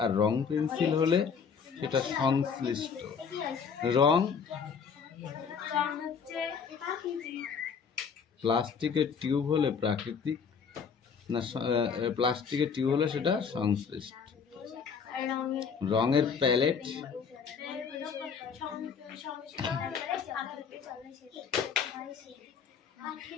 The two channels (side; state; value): right; quieter; 6.3 dB